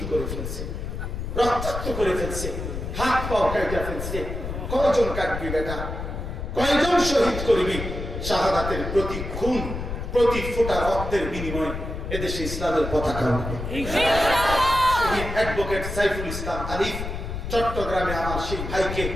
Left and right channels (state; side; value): noise; left; rumble, 6 dB below the sound